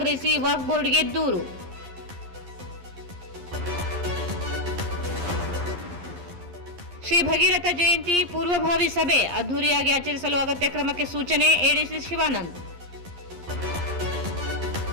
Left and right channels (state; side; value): late; left; 11 ms